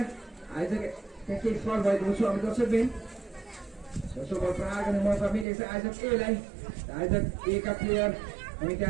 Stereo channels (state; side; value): drops out; left; at 5.5 s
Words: आइज केही फल भएको छौँ हामी दर्शकबिन। दोस्रो बल प्रहार गर्ने मौका मिलेको छ आइजक एलाई। आइजक ए का प्लेयर हामी